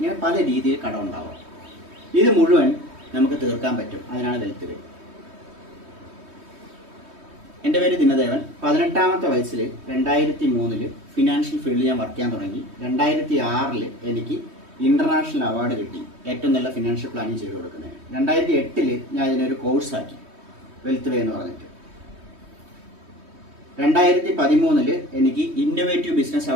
പല രീതിയിൽ കടം ഉണ്ടാവും. ഇത് മുഴുവൻ നമുക്ക് തീർക്കാൻ പറ്റും. അതിനാണ് വെൽത്ത് വേ. എൻ്റെ പേര് ദിനദേവൻ. 18ാമത്തെ വയസ്സിൽ 2003 ഫിനാൻഷ്യൽ ഫീൽഡിൽ ഞാൻ വർക്ക് ചെയ്യാൻ തുടങ്ങി. 2006 എനിക്ക് ഇൻ്റർനാഷണൽ അവാർഡ് കിട്ടി ഏറ്റവും നല്ല ഫിനാൻഷ്യൽ പ്ലാനിങ് ചെയ്ത് കൊടുക്കുന്നതിന്. 2008 ഞാൻ ഇതിനൊരു കോഴ്സാക്കി, വെൽത്ത് വേ എന്ന് പറഞ്ഞിട്ട്. 2013 എനിക്ക് ഇന്നോവേറ്റീവ് ബിസിനസ്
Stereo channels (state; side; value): late; left; 3.2 ms